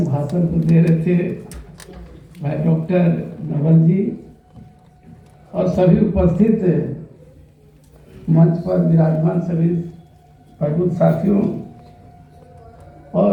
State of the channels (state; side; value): identical; both; correlation 1.00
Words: भाषण को दे रहे थे, भाई डॉक्टर नवल जी और सभी उपस्थित मंच पर विराजमान सभी प्रबुद्ध साथियों